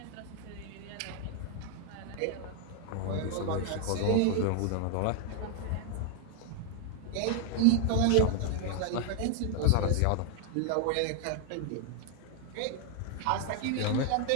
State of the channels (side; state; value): both; different; correlation 0.00